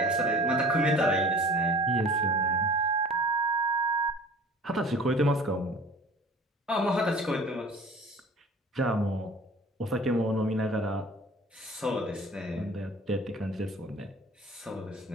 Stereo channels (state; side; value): normal; both; correlation 0.45